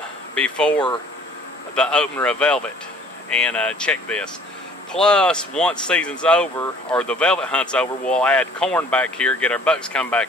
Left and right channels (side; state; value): both; normal; correlation 0.53